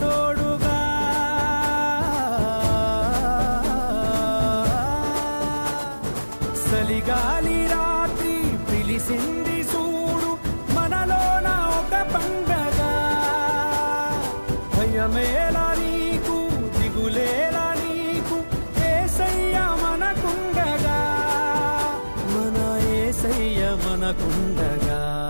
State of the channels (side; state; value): both; inverted; correlation -1.00